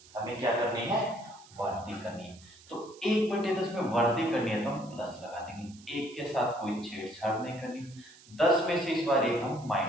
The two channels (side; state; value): right; noise; hiss, 23 dB below the sound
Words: हमें क्या करनी है, वृद्धि करनी है। तो 1/10 में वृद्धि करनी है तो हम प्लस लगा देंगे। 1 के साथ कोई छेड़छाड़ नहीं करनी। 10 में से इस बार 1 हम